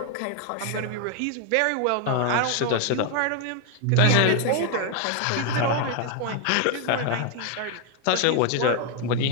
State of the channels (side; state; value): both; different; correlation 0.01